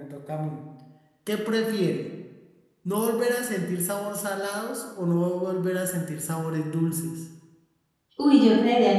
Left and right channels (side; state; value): both; identical; correlation 1.00